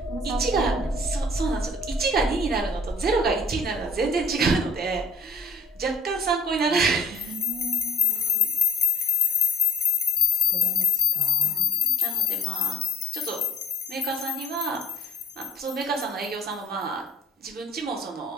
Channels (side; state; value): both; normal; correlation 0.61